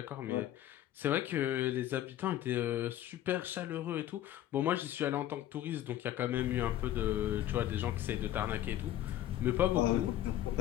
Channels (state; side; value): quieter; right; 12.7 dB